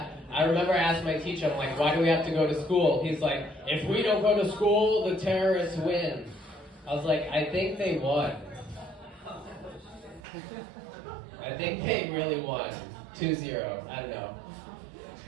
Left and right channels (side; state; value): left; drops out; at 10.2 s